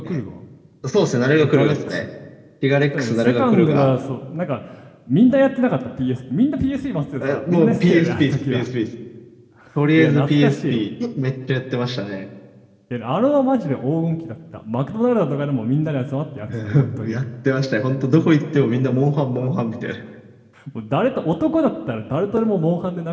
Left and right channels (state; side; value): identical; both; correlation 1.00